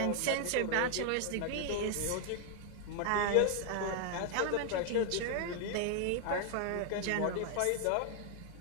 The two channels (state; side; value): different; both; correlation 0.00